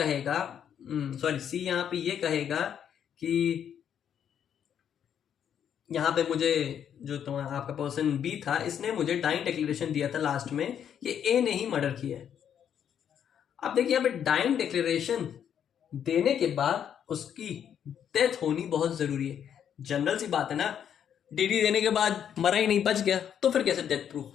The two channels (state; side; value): quieter; right; 8.9 dB